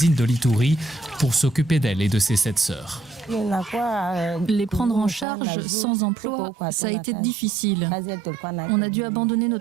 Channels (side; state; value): left; drops out; at 5.2 s